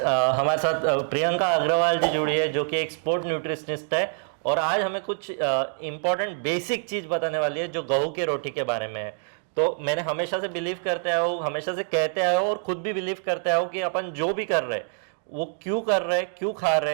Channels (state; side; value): silent; left; digital silence